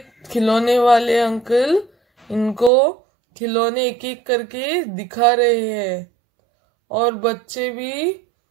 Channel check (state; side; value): drops out; left; at 2.7 s